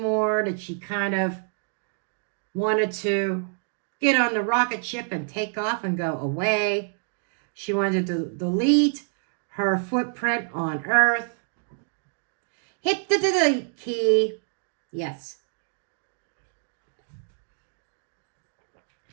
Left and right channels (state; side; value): silent; left; 60 dB below the other